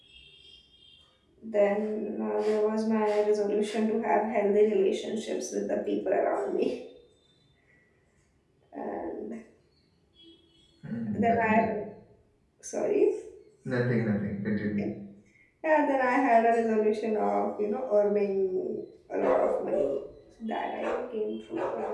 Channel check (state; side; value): identical; both; correlation 1.00